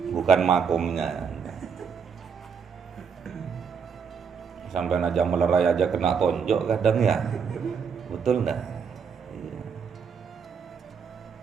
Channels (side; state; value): left; quieter; 6.4 dB